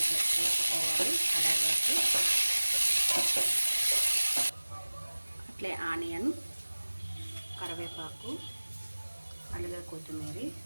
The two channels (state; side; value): inverted; both; correlation -1.00